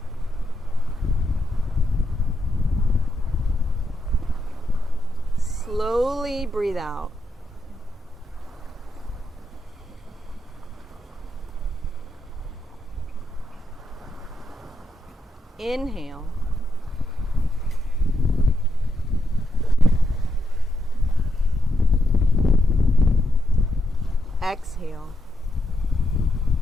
Slowly breathe out. Inhale. Exhale.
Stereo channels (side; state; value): both; normal; correlation 0.82